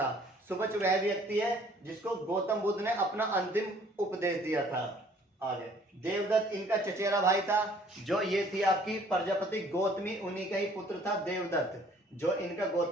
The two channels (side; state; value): both; normal; correlation 0.58